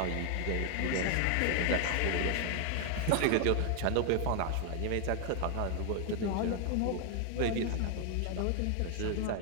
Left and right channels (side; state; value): both; different; correlation 0.00